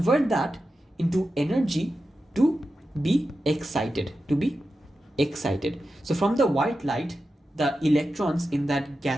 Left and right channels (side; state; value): both; normal; correlation 0.91